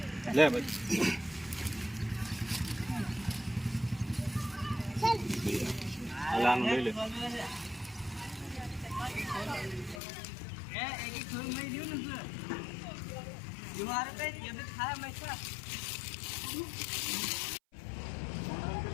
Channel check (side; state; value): right; drops out; at 10.0 s